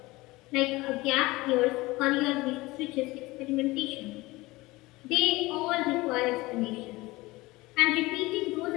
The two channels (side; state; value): right; quieter; 20.7 dB